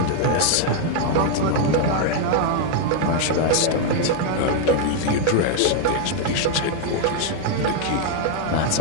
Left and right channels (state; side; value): different; both; correlation 0.00